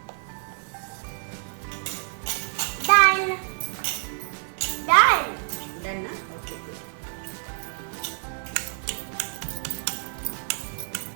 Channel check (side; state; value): left; silent; 59 dB below the other